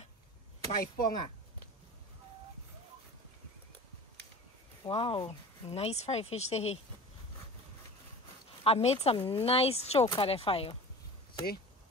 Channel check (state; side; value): normal; both; correlation 0.37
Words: 5 ponga. Wow. Nice fried fish there. I made some nice choke at the fire. See?